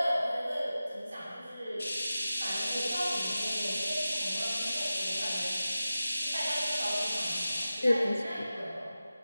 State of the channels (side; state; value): both; inverted; correlation -0.94